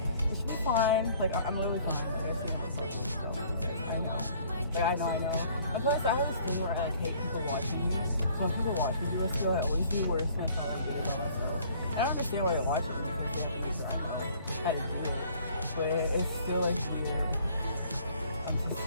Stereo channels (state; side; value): inverted; both; correlation -0.57